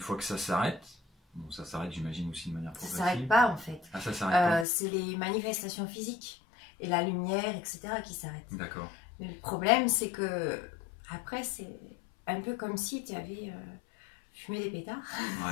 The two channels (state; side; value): drops out; right; at 4.7 s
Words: que ça s'arrête, bon, ça s'arrête, j'imagine aussi de manière progressive. Ça s'arrête pas en fait. Ah, ça s'arrête pas. C'est les manifestations physiques et la lumière, etc. qui s'arrêtent. D'accord. Mais le problème, c'est que après, c'est un peu comme si tu avais fumé des pétards,